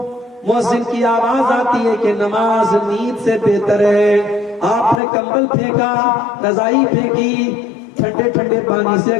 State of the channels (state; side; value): drops out; right; at 5.0 s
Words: مؤذن کی آواز آتی ہے کہ نماز نیند سے بہتر ہے. آپ نے کمبل پھینکا، رضائی پھینکی، ٹھنڈے ٹھنڈے پانی سے،